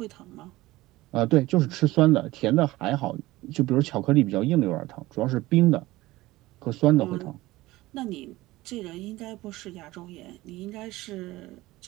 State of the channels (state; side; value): quieter; left; 18.5 dB